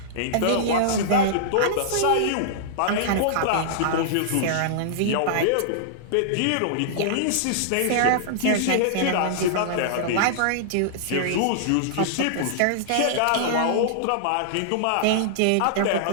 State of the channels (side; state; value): both; different; correlation -0.02